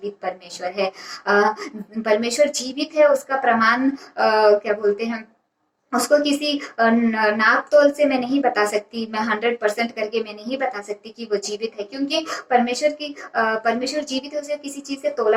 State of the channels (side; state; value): both; identical; correlation 1.00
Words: परमेश्वर है। परमेश्वर जीवित है उसका प्रमाण क्या बोलते हैं, उसको किसी नाप तोल से मैं नहीं बता सकती, मैं 100% करके मैं नहीं बता सकती कि वो जीवित है, क्योंकि परमेश्वर जीवित है, उसे किसी चीज से